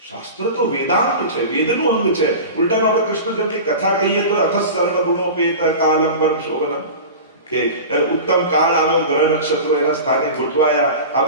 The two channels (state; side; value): inverted; both; correlation -0.32